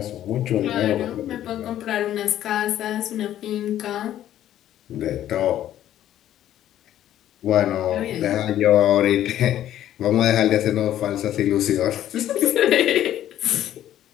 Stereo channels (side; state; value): right; quieter; 12.0 dB